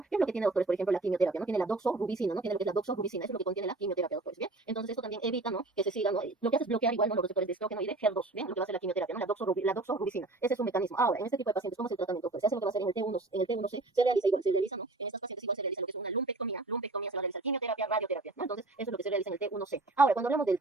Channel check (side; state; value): left; quieter; 3.1 dB